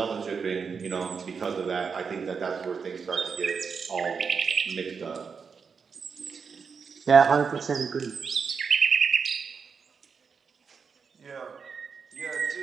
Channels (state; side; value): quieter; left; 5.8 dB